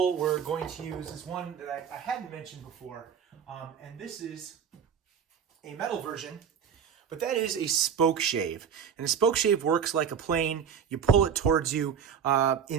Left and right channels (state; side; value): quieter; left; 7.5 dB